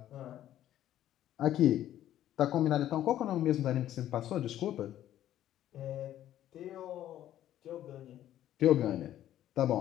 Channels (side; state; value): right; quieter; 12.3 dB